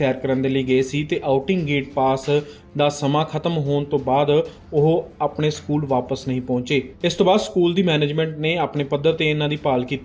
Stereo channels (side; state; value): both; identical; correlation 1.00